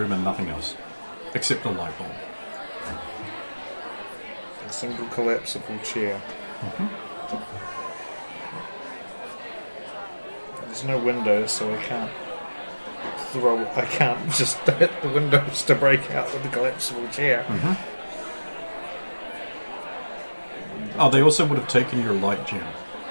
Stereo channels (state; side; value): inverted; both; correlation -1.00